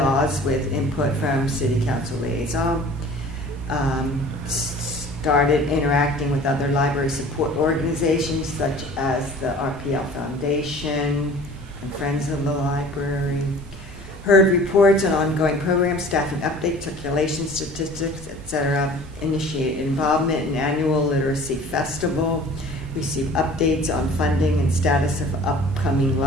with input from City Council liaison. Started interacting with other library support organizations such as the RPL Foundation and Friends of the Library. Heard reports on ongoing programs, staffing updates, circulation statistics, etc. Initiated involvement in annual literacy festival. receive updates on funding and status of upcoming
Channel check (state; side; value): normal; both; correlation 0.46